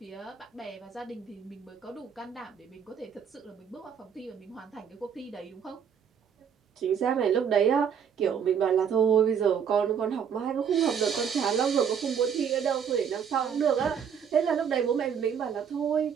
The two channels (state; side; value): quieter; left; 7.6 dB